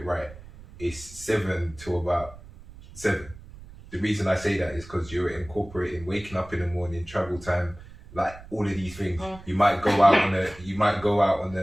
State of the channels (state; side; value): noise; right; rumble, 18 dB below the sound